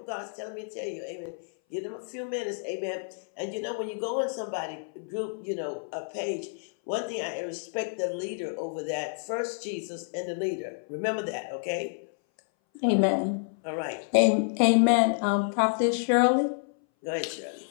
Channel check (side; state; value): right; silent; 58 dB below the other